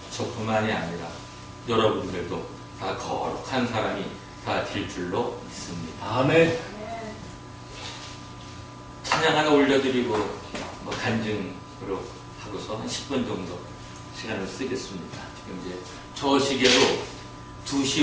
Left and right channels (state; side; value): identical; both; correlation 1.00